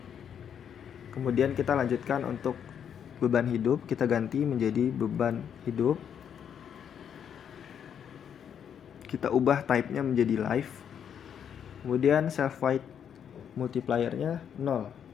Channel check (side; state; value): right; quieter; 8.3 dB